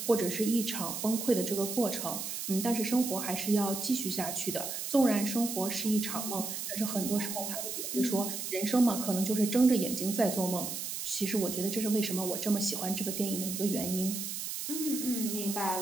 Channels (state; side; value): noise; right; hiss, 5 dB below the sound